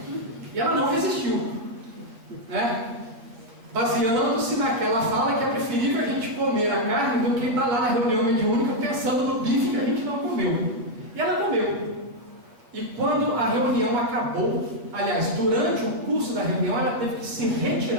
E ela não resistiu, né? Baseando-se naquela fala que é preferível a gente comer a carne do que estar lá na reunião mediúnica pensando no bife que a gente não comeu. E ela comeu. E quando a reunião acabou, aliás, durante o curso da reunião, ela teve que se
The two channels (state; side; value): late; left; 8.6 ms